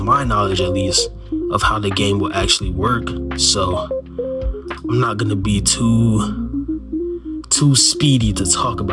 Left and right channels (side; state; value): both; identical; correlation 1.00